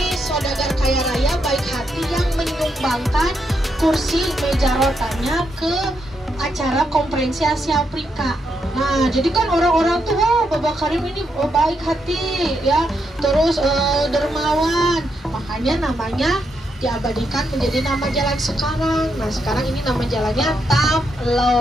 saudagar kaya raya baik hati yang menyumbangkan kursi meja rotanya ke acara konferensi Asia Afrika. Nah, jadi kan orang-orang tuh, wah, Babah Karim ini baik hati ya, terus dermawan. Makanya namanya diabadikan menjadi nama jalan sekarang. Nah, sekarang ini nama jalannya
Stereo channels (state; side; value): normal; both; correlation 0.80